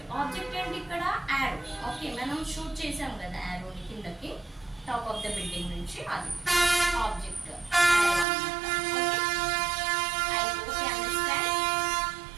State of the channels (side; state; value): left; drops out; at 8.2 s